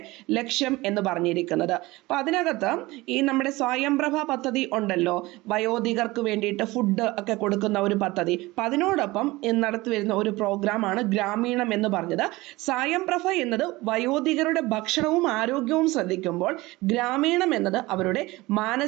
ലക്ഷ്യം എന്ന് പറഞ്ഞിരിക്കുന്നത്. അപ്പൊ അതിനകത്ത് ഈ നമ്മുടെ സ്വയംപ്രഭ പദ്ധതി ഉണ്ടല്ലോ, വയോധികർക്ക് വേണ്ടിയിട്ട് ഫുഡ് ഒക്കെ കൊടുക്കുന്ന ഒരു പദ്ധതി. അപ്പൊ അതിനോടൊപ്പം നടത്തി വരുന്ന ഒരു പ്രോഗ്രാമാണ് ഗ്രാമീണം എന്ന് പറഞ്ഞത്. സ്വയംപ്രഭ എന്നത് വയോധികരുടെ ഭക്ഷണവും ആരോഗ്യവും ശ്രദ്ധിക്കുമ്പോൾ ഗ്രാമീണം എന്നത് അവരുടെ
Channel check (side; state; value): left; quieter; 20.5 dB